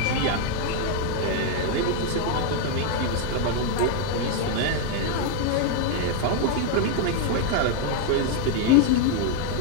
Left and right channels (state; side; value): different; both; correlation 0.00